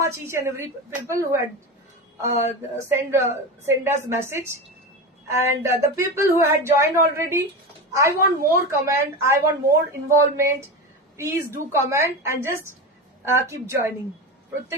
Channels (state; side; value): normal; both; correlation 0.22